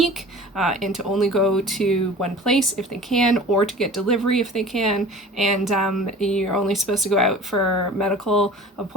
and to only go to one place if they can, or to get delivery if they can, and you're only supposed to go out for medical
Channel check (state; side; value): normal; both; correlation 0.42